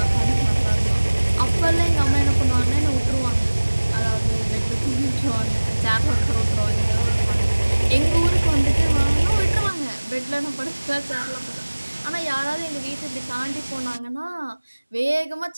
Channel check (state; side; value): inverted; both; correlation -1.00